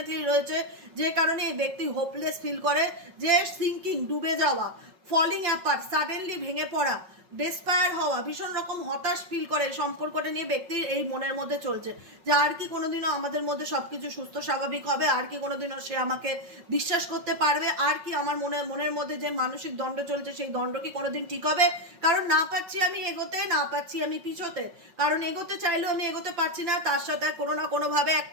রয়েছে। যে কারণে এই ব্যক্তি হোপলেস ফিল করে, যে সিঙ্কিং, ডুবে যাওয়া, ফলিং অ্যাপার্ট, সাডেনলি ভেঙে পড়া, ডেসপায়ার হওয়া, ভীষণ রকম হতাশ ফিল করে সম্পর্কটা নিয়ে ব্যক্তির এই মনের মধ্যে চলছে যে আর কি কোনোদিনও আমাদের মধ্যে সব কিছু সুস্থ স্বাভাবিক হবে, আর কি কোনোদিনও সে আমাকে বিশ্বাস করতে পারবে, আর কি আমার মনের মধ্যে যে মানসিক দ্বন্দ্ব চলছে সেই দ্বন্দ্ব কি কোনোদিন ঠিক হবে। কারণ না পাচ্ছি আমি এগোতে, না পাচ্ছি আমি পিছোতে, কারণ এগোতে চাইলেও আমি এগোতে পারছি না, তার সাথে কোনো না কোনোভাবে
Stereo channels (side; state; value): left; late; 5.4 ms